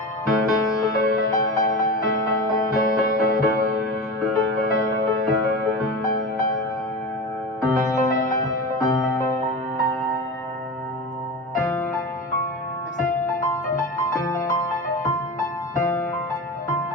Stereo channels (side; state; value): both; normal; correlation 0.28